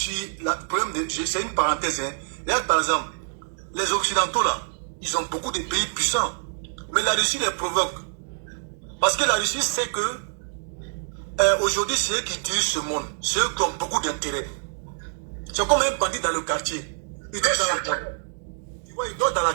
c'est une parenthèse, hein. Regarde par exemple, les Occidentaux là, ils ont beaucoup de pays puissants. Mais la Russie les provoque. Parce que la Russie sait que aujourd'hui, c'est eux qui dirigent ce monde. C'est eux qui ont beaucoup d'intérêt. C'est comme un bandit dans le quartier. Il dort dans la galère. Tu vois, il dort dans la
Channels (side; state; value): left; silent; digital silence